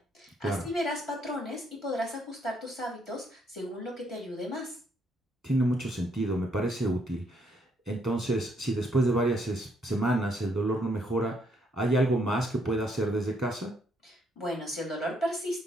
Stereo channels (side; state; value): both; normal; correlation 0.71